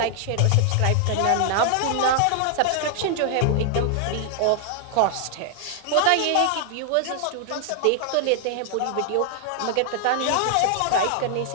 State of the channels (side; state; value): both; different; correlation 0.00